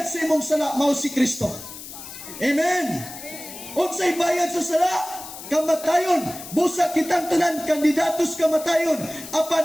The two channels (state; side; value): noise; left; hiss, 13 dB below the sound